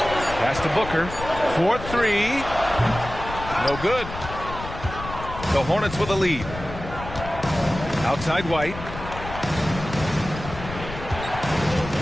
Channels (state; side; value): noise; left; rumble, 10 dB below the sound